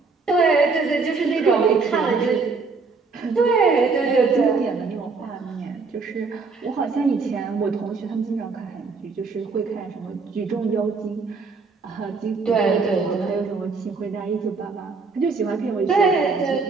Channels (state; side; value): quieter; left; 4.4 dB